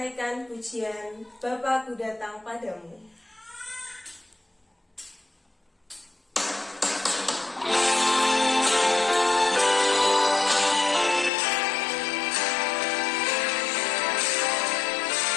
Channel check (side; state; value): right; drops out; at 11.3 s